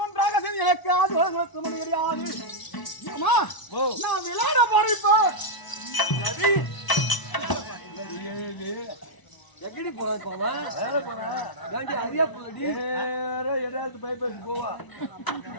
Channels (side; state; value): right; late; 1.0 ms